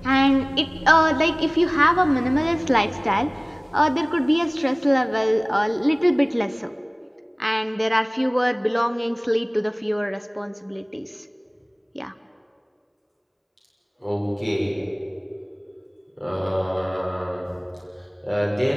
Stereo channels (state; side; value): identical; both; correlation 1.00